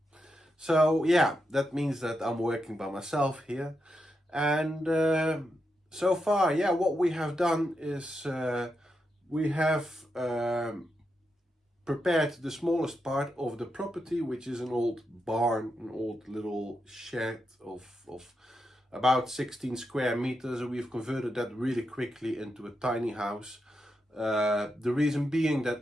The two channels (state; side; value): normal; both; correlation 0.85